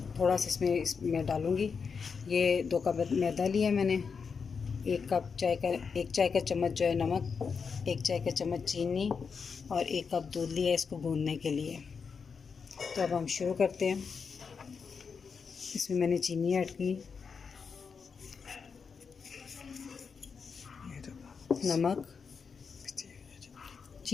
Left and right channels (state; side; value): quieter; right; 5.7 dB